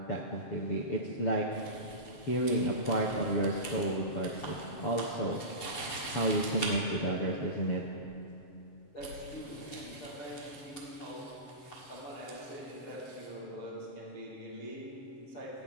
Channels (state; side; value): late; right; 6.9 ms